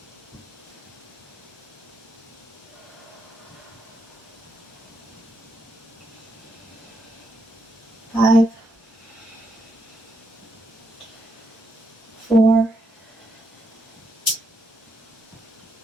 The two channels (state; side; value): normal; both; correlation 0.79